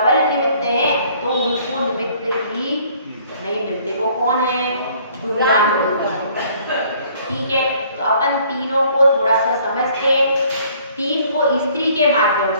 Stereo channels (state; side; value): inverted; both; correlation -0.59